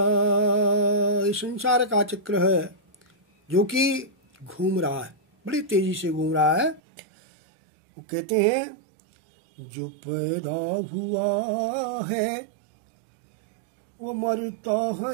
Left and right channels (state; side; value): drops out; left; at 6.8 s